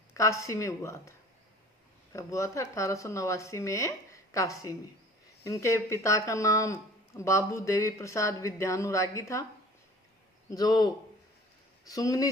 काशी में हुआ था। कब हुआ था? 1889 में काशी में। इनके पिता का नाम बाबू देवी प्रसाद विद्यानुरागी था, जो सुंगनी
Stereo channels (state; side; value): normal; both; correlation 0.46